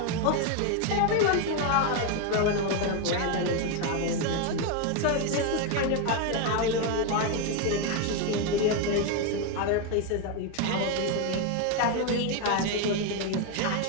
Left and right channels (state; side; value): different; both; correlation 0.02